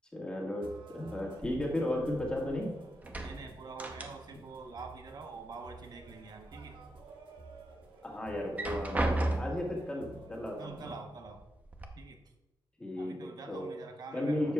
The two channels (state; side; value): normal; both; correlation 0.86